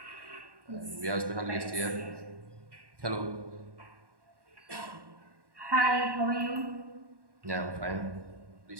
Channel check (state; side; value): late; left; 1.1 ms